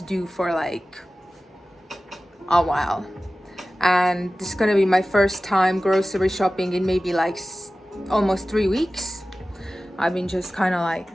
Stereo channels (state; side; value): normal; both; correlation 0.96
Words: do for like a while. And this is gonna be my first time grocery shopping in maybe like almost 3 weeks. I've been just kind of